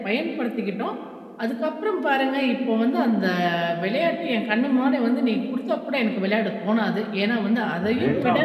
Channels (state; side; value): identical; both; correlation 1.00